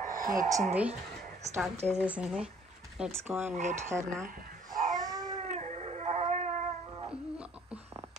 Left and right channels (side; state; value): both; normal; correlation 0.58